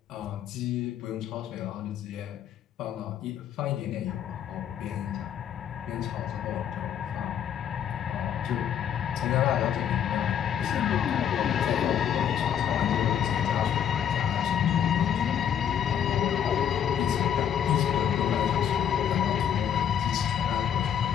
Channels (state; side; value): quieter; right; 9.1 dB